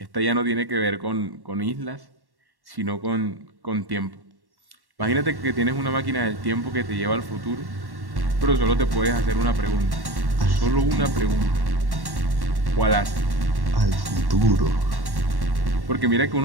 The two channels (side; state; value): left; late; 1.1 ms